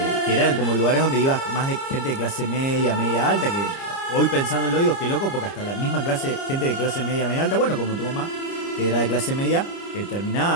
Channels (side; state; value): right; late; 30 ms